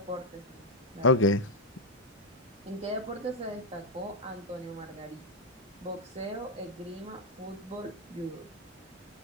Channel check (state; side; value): normal; both; correlation 0.03